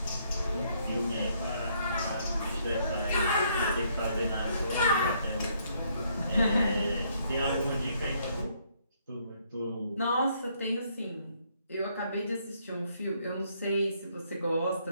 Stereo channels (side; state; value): both; inverted; correlation -0.70